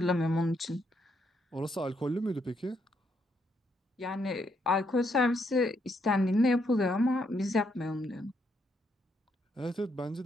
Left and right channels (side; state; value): both; normal; correlation 0.75